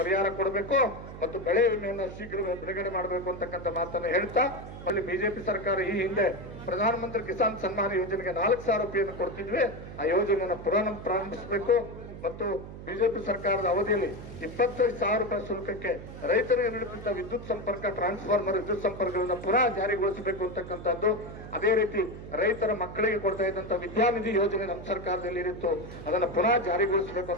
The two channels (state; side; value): noise; right; hum, 12 dB below the sound